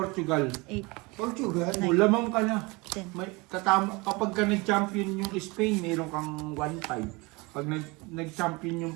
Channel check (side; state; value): left; quieter; 25.6 dB